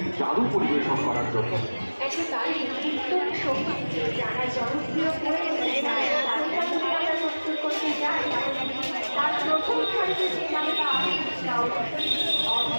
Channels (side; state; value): both; inverted; correlation -1.00